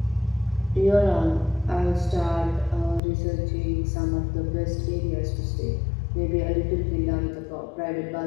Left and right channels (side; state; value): right; drops out; at 3.0 s